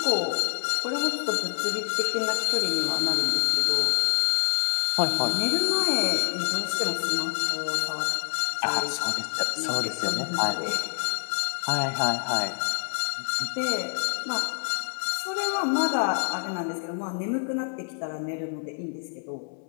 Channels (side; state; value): right; silent; digital silence